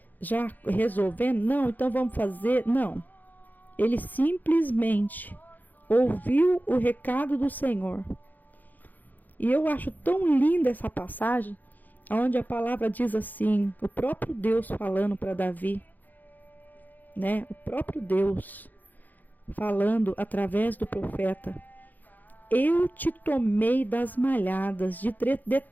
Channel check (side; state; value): right; late; 0.084 ms